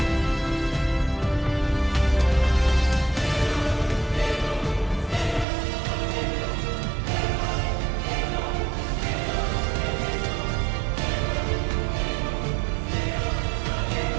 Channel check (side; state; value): left; drops out; at 5.5 s